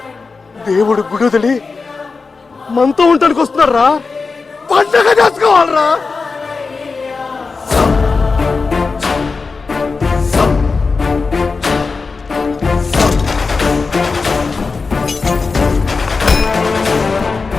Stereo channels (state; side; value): quieter; right; 4.4 dB